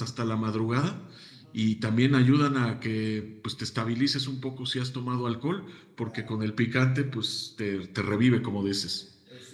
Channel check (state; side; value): identical; both; correlation 1.00